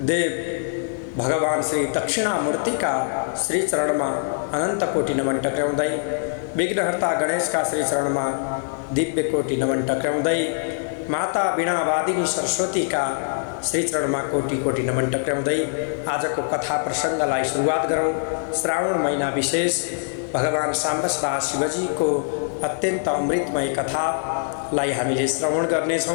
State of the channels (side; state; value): right; silent; digital silence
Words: देव भगवान श्री दक्षिणामूर्ति का श्री चरण में अनंत कोटि नमन टक्राउँदै विघ्नहर्ता गणेश का श्री चरण में दिव्य कोटि नमन टक्राउँदै माता वीणावादिनी सरस्वती का श्री चरण में कोटि कोटि नमन टक्राउँदै आज को कथा प्रसंगलाई सुरुवात गरौं। श्रावण महीना विशेष भगवान साम्बसदा शिवजी को अत्यंत अमृतमय कथालाई हामीले श्रवण